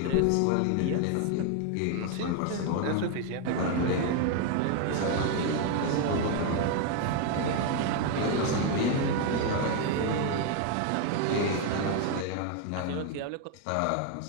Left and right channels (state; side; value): different; both; correlation 0.01